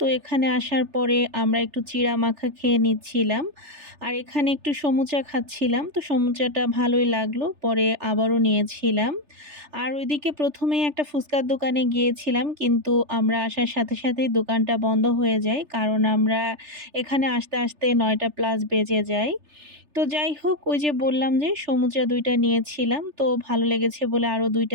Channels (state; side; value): late; left; 3.3 ms